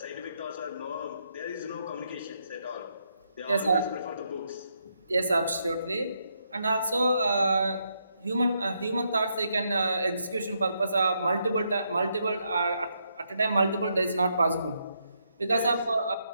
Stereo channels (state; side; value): inverted; both; correlation -0.78